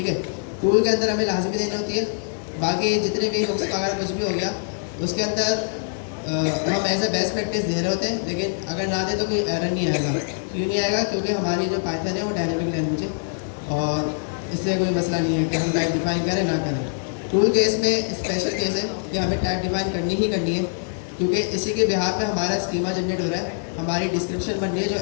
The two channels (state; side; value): silent; right; digital silence